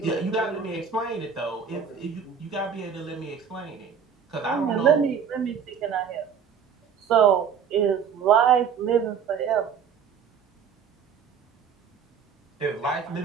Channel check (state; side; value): quieter; left; 7.1 dB